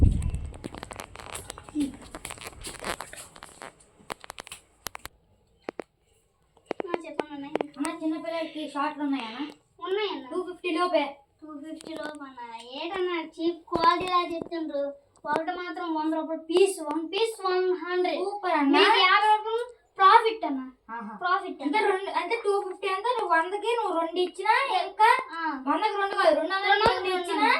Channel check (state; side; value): identical; both; correlation 1.00